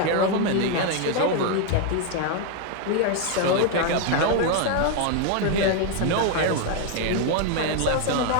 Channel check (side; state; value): both; different; correlation 0.01